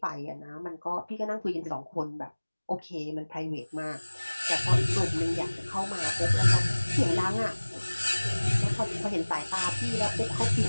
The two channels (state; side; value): inverted; both; correlation -1.00